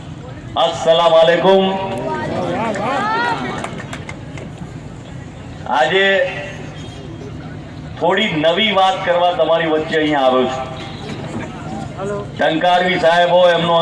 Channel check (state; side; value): identical; both; correlation 1.00